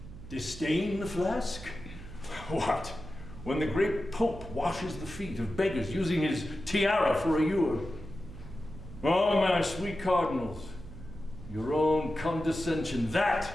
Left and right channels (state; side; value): noise; right; hum, 14 dB below the sound